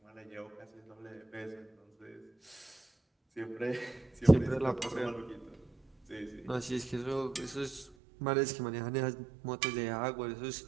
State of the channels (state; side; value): drops out; left; at 8.0 s